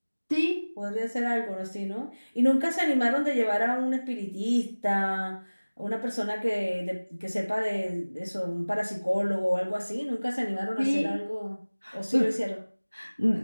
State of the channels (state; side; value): inverted; both; correlation -1.00